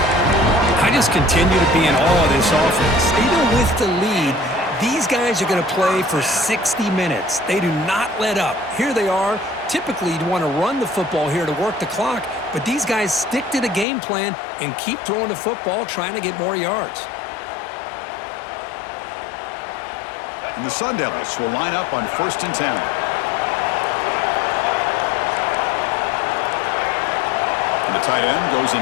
I just continue to be in awe of this offense. Even with the lead, these guys are going to play for 60 minutes. They do not let up. Here they are, Typically, you'd want to run the football here to work the clock, but these guys stick to the game plan and keep throwing the football, trying to get more yards. And the Sun Devils will line up on 1st and 10. And the tight end goes in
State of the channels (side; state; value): right; drops out; at 13.9 s